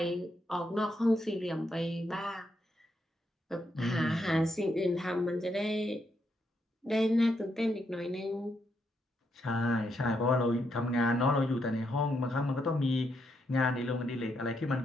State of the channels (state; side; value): normal; both; correlation 0.79